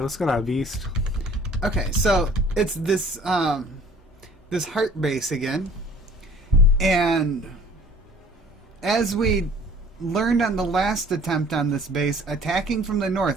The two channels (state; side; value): normal; both; correlation 0.52